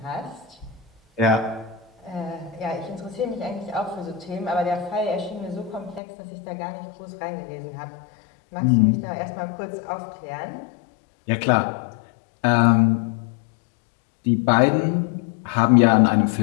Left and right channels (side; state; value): right; drops out; at 6.0 s